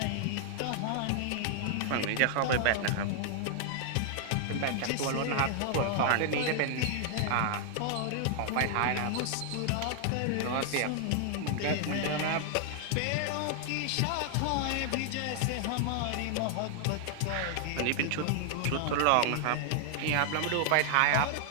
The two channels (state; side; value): different; both; correlation 0.00